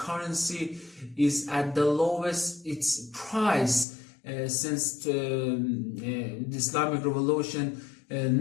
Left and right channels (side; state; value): right; drops out; at 3.9 s